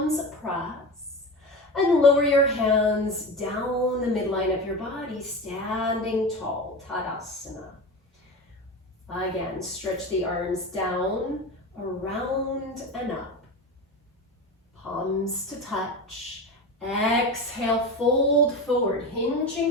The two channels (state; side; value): normal; both; correlation 0.26